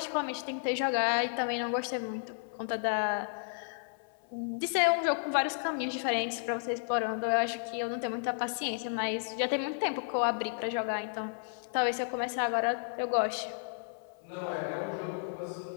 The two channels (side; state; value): right; silent; 56 dB below the other